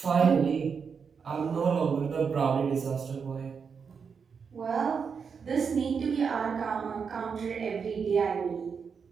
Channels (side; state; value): left; quieter; 6.1 dB